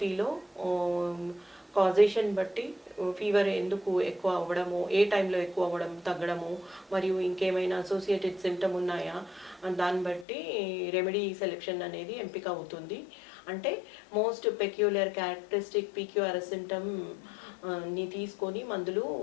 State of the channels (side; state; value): right; drops out; at 10.2 s